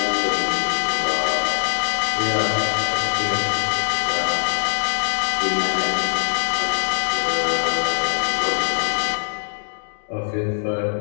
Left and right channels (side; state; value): right; silent; digital silence